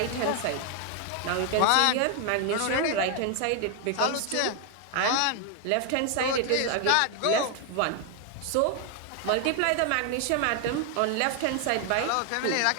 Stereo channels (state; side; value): different; both; correlation 0.00